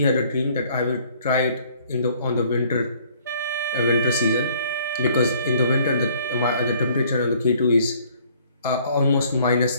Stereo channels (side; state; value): both; inverted; correlation -0.59